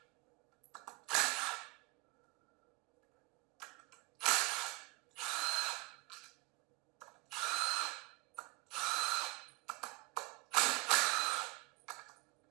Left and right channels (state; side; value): quieter; left; 26.4 dB